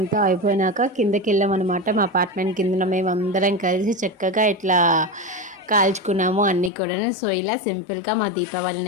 అయిపోయినాక కిందకి వెళ్ళామన్నమాట. మా అపార్ట్మెంట్ కింద మేము అందరం కలిసి చక్కగా ఇట్లా కాల్చుకున్నాము అన్నీ కూడా. సో ఇలా సింపుల్గా మా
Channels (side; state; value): right; drops out; at 6.7 s